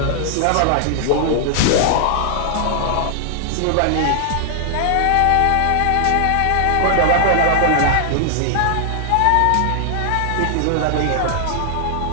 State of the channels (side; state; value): both; different; correlation 0.00